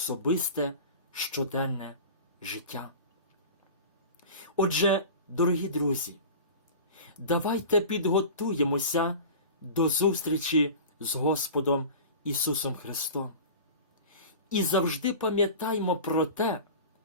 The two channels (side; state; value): both; inverted; correlation -0.35